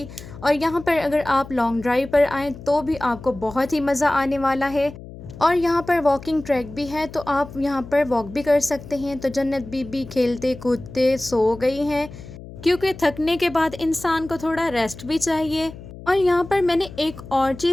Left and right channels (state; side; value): noise; left; hum, 15 dB below the sound